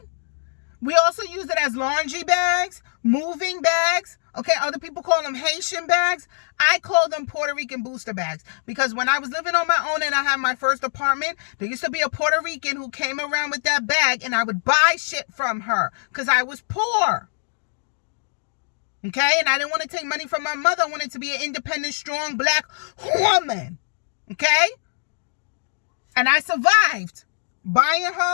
We also use it as laundry bags, moving bags. Okay, other people call them Haitian bags. I call them Puerto Rican booster bags because when I was living on my own and I had my first apartment, there used to be a Puerto Rican who came around with that bag and I would buy shit from her because I was poor. Okay, and I didn't want to take money from my mother. I wanted to be an independent, strong black woman. Okay? And I survived buying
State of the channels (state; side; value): silent; right; digital silence